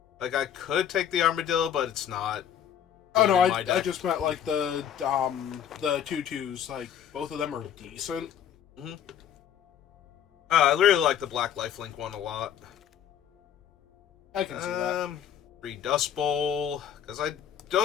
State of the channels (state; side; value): quieter; right; 9.4 dB